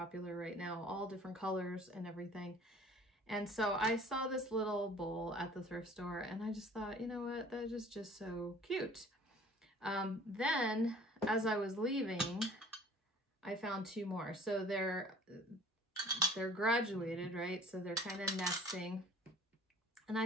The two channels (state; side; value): normal; both; correlation 0.49